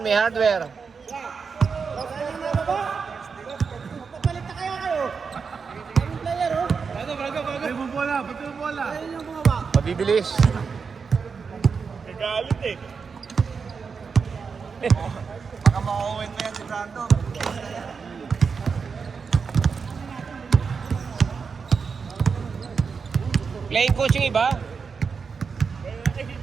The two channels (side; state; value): left; quieter; 5.5 dB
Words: hardware. Mabibilis. Baka makauwin pa yan si Brando. Playing coach yung iba.